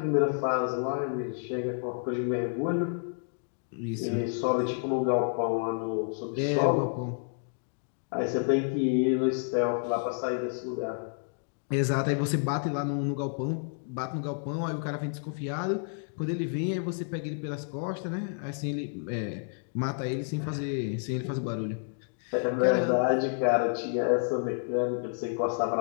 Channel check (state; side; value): silent; right; digital silence